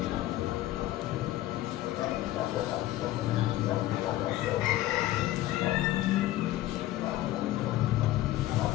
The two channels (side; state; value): right; quieter; 15.3 dB